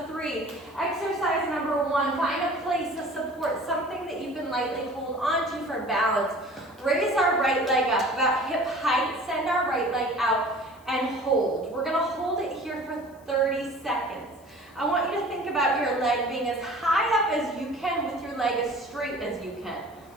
3. Exercise number 1, find a place of support, something that you can lightly hold onto for balance. Raise our right leg up about hip height, send our right leg out, and hold. We're going to hold it here for 30 seconds. I want you to think about your leg being as high up as you can with your leg as straight as you can.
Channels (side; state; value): left; noise; hiss, 29 dB below the sound